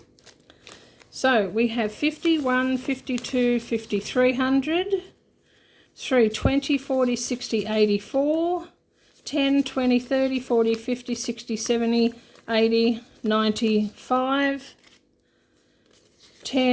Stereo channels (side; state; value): both; identical; correlation 1.00